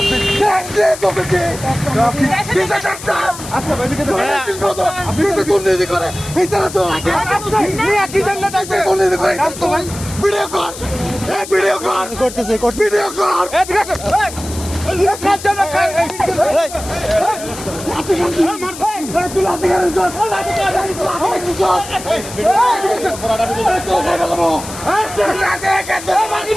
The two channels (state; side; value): noise; left; hiss, 12 dB below the sound